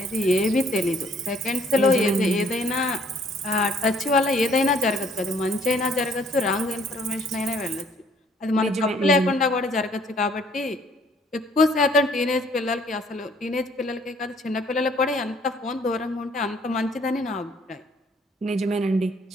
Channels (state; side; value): normal; both; correlation 0.61